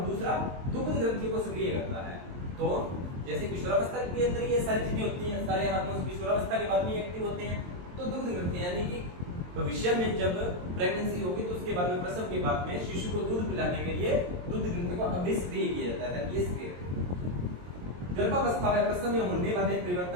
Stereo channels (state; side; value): late; left; 22 ms